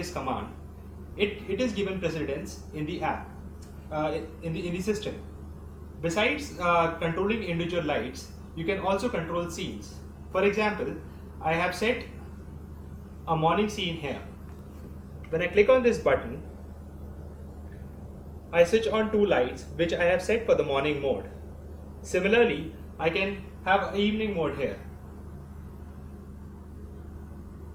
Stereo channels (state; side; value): identical; both; correlation 1.00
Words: command, it is given precedence in the app, in the system. Besides controlling individual lights, you can also control scenes. For example, I have set a morning scene here. When I click on this button, I switch on 2 lights which I have set for the morning mode. Similarly, I can have an evening mode here.